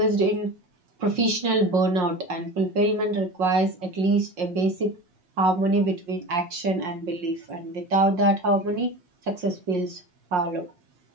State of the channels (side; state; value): left; late; 5.6 ms